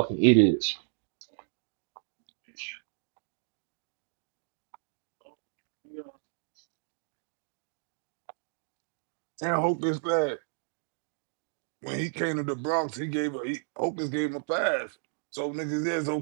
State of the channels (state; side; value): silent; left; digital silence